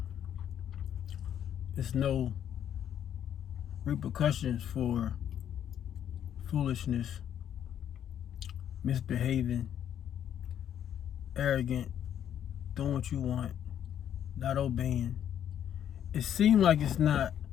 there's no repercussions for foolishness, misbehaving, arrogant, doing what you want, not obeying. It seems like it's not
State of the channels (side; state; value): right; quieter; 9.8 dB